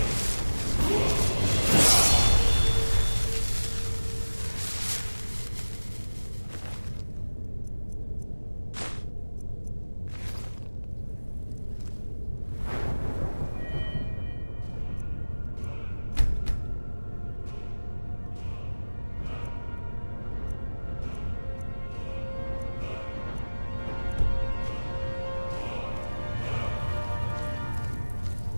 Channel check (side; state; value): both; inverted; correlation -1.00